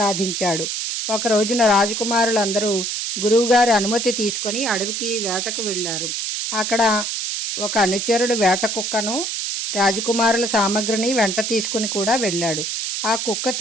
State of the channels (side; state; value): right; noise; hiss, 2 dB below the sound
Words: ఒక రోజున రాజకుమారులందరూ గురువుగారి అనుమతి తీసుకొని అడవికి వేటకు వెళ్ళారు. అక్కడ ఒక అనుచరుడు వేట కుక్కను, రాజకుమారుల సామగ్రిని వెంట తీసుకుని కూడా వెళ్ళాడు. ఆ కుక్క